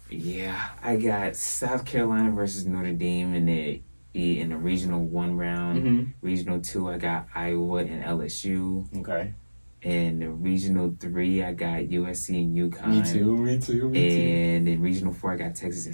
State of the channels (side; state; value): both; inverted; correlation -1.00